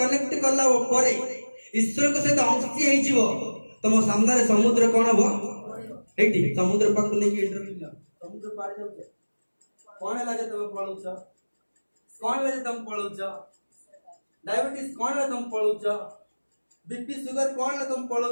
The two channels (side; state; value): both; inverted; correlation -1.00